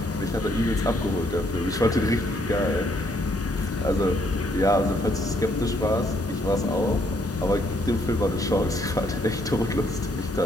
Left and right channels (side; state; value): both; normal; correlation 0.70